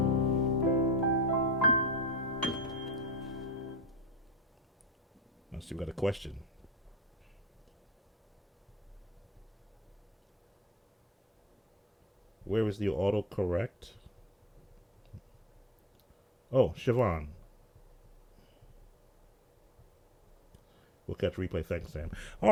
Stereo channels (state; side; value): normal; both; correlation 0.39